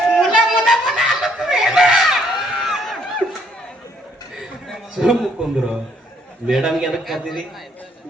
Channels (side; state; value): both; normal; correlation 0.67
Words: ಮುಲ ಮುಲ ಮುಲ ಅನ್ನುತ್ತವೇನ ಸುಮ್ಮನೆ ಕುಂದ್ರು ಮೇಡಮ್ಗೆ ಅದಕ್ಕೆ ಕರ್ದಿರಿ